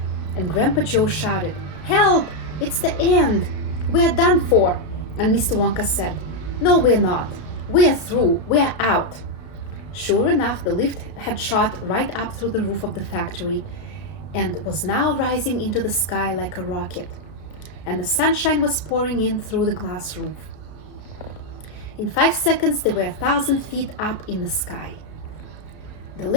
and Grandpa Joe shouted, "Help! It's the end! We're done for!" And Mr. Wonka said, "No, we're not. We're through. We're out." Sure enough, the lift had shot right up through the roof of the factory and was now rising into the sky like a rocket, and the sunshine was pouring in through the glass roof. In 5 seconds, they were 1,000 feet up in the sky. "The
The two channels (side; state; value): right; late; 33 ms